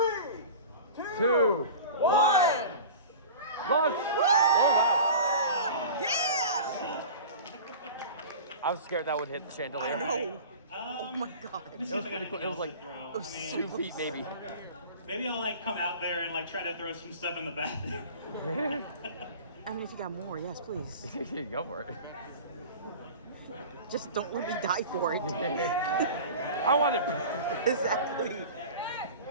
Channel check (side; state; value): both; inverted; correlation -0.36